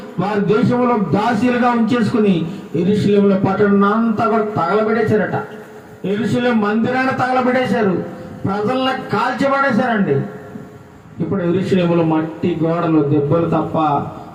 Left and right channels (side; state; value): both; identical; correlation 1.00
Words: వారి దేశంలో దాసీలుగా ఉంచేసుకుని యెరూషలేములో పట్టణం అంతా కూడా తగలబెట్టేశారట. యెరూషలేము మందిరాన్ని తగలబెట్టేశారు, ప్రజల్ని కాల్చిపడేశారండి. ఇప్పుడు యెరూషలేములో మట్టి గోడలు దెబ్బలు తప్ప